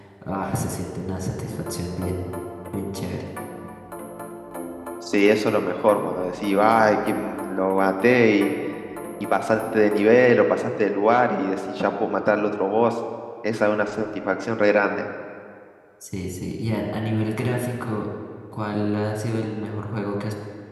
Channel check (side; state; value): both; identical; correlation 1.00